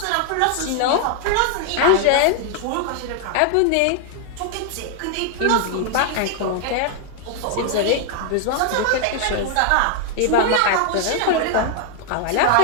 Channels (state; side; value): different; both; correlation 0.00